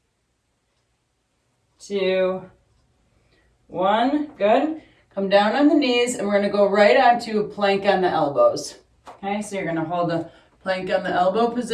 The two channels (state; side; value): identical; both; correlation 1.00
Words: 2, 1. Good. Come down on the knees, and we're going to go right onto a plank on the elbows. Okay, so you're going to hold the plank on the elbow